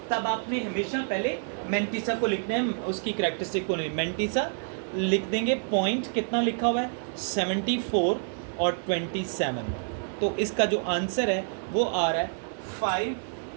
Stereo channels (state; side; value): silent; left; 55 dB below the other